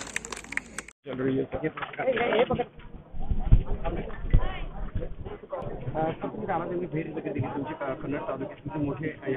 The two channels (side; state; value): both; identical; correlation 1.00